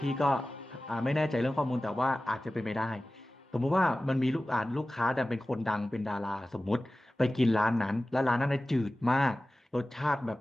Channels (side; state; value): both; normal; correlation 0.96